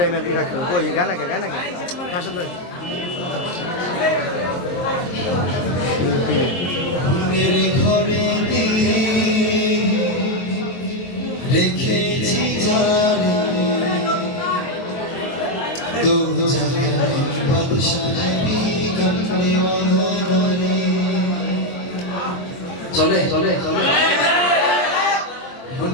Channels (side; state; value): right; late; 23 ms